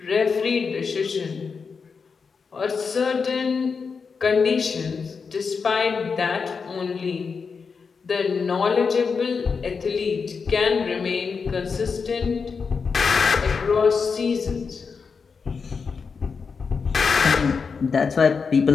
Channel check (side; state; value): right; quieter; 5.4 dB